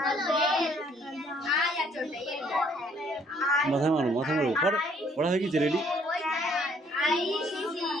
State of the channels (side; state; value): both; normal; correlation 0.64